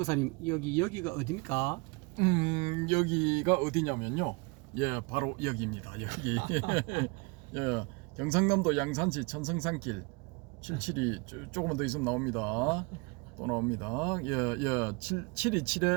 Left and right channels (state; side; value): quieter; left; 29.3 dB